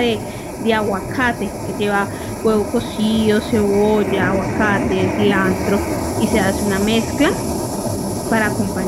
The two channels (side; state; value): both; identical; correlation 1.00